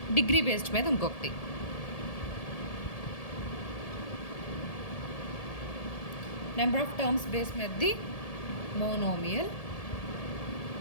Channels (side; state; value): right; late; 1.7 ms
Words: డిగ్రీ బేస్డ్ మీద ఇంకొకటి. నెంబర్ ఆఫ్ టర్మ్స్ బేస్ మీదది మోనోమియల్,